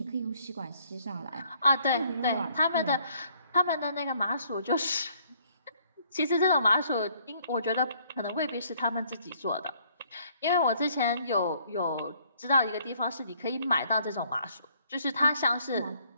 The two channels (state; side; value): inverted; both; correlation -0.63